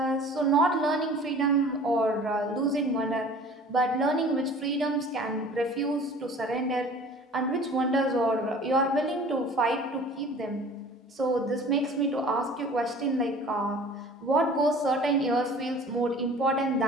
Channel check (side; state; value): both; normal; correlation 0.46